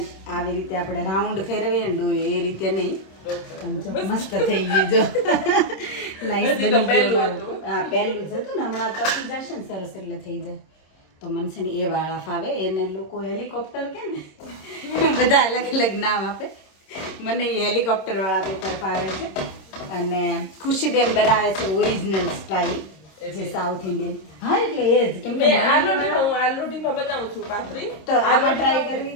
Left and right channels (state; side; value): late; right; 26 ms